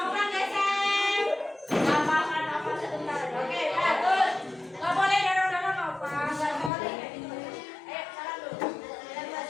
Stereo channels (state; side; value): drops out; right; at 6.7 s